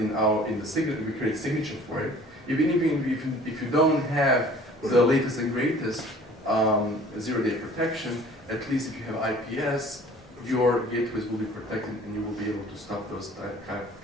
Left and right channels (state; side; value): normal; both; correlation 0.50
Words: the signature, we create a signature for it. Even if you don't have the latest and greatest, zero-day protection, at least if you have IPS, your gateways will be protected and you will be able to stop those type